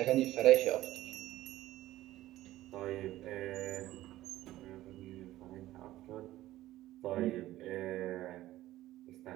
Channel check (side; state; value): left; quieter; 15.4 dB